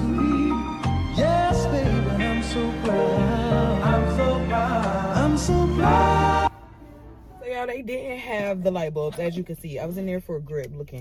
Yes, baby, I'm so proud. I'm so proud. I'm so proud. So y'all, they didn't have the light bulbs, as you can see. I was in there for a grip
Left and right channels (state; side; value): identical; both; correlation 1.00